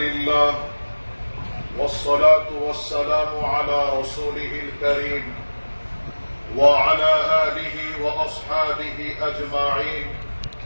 والصلاة والسلام على رسوله الكريم وعلى آله وأصحابه أجمعين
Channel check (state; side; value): inverted; both; correlation -1.00